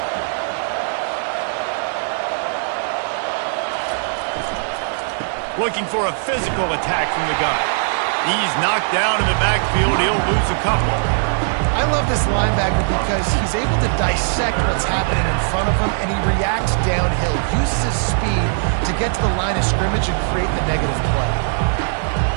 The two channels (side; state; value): left; silent; digital silence